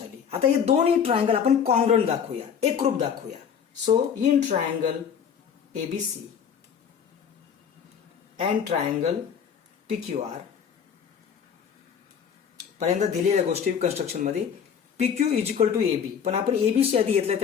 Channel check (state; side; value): quieter; right; 7.5 dB